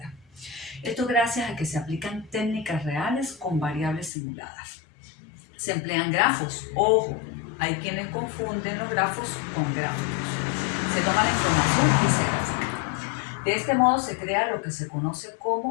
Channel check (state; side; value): drops out; right; at 4.1 s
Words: Esto gracias a que se aplican técnicas reales con variables simuladas. Se emplean grafos. Ojo, hay quienes confunden los grafos con gráficos. Se toma la información y se grafica. De este modo se crea lo que se conoce